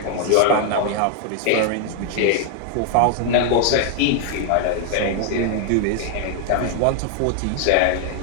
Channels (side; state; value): both; different; correlation 0.00